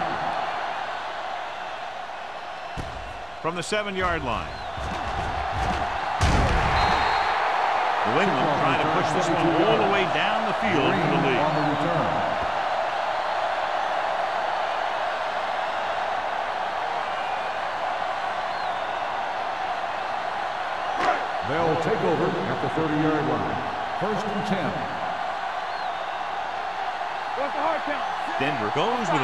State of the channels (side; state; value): both; identical; correlation 1.00